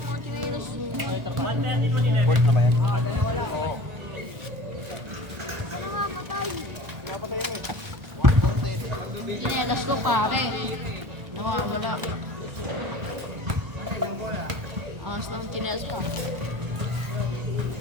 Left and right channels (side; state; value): left; late; 1.4 ms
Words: Port na ba yan? Oo. Sinelas ko pare. Nawawala. Angas ng chinelas pa.